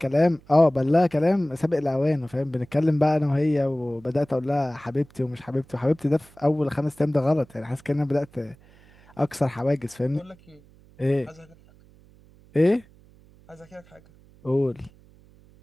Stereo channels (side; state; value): right; noise; hum, 27 dB below the sound